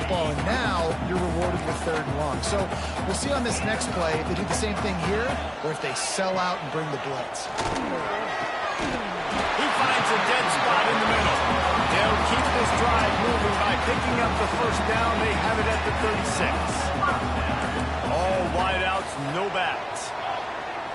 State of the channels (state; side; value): identical; both; correlation 1.00